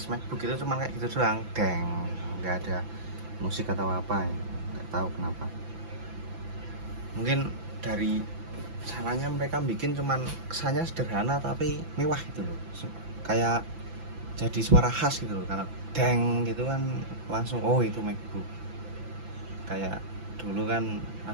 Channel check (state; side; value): late; left; 5.9 ms